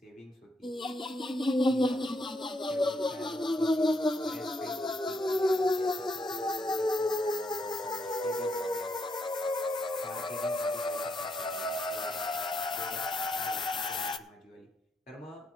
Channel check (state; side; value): normal; both; correlation 0.78